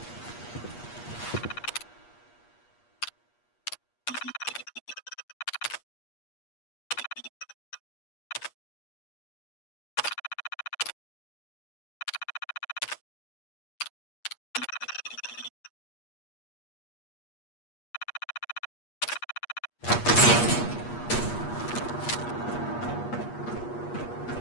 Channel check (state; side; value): late; right; 8.4 ms